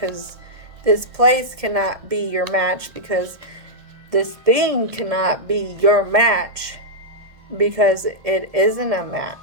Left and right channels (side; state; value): left; late; 1.7 ms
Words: this place cannot be your match, because this thing cannot be your match, because it isn't a match.